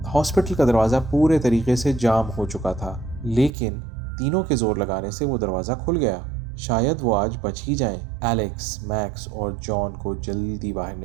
हॉस्पिटल का दरवाज़ा पूरे तरीके से जाम हो चुका था, लेकिन तीनों के जोर लगाने से वो दरवाज़ा खुल गया। शायद वो आज बच ही जाएं। एलेक्स, मैक्स और जॉन को जल्दी बाहर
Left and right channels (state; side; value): drops out; left; at 3.5 s